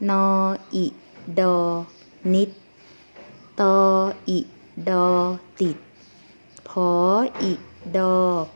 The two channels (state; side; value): inverted; both; correlation -1.00